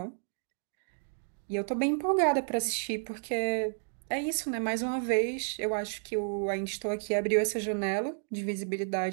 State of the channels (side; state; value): left; silent; digital silence